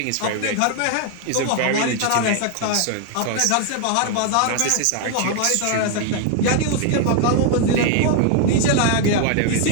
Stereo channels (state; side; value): different; both; correlation 0.01